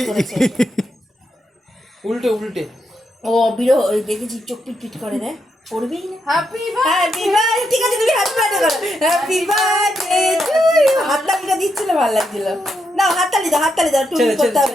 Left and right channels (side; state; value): both; normal; correlation 0.82